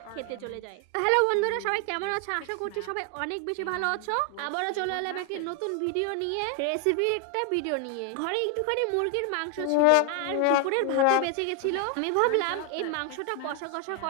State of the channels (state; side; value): different; both; correlation 0.00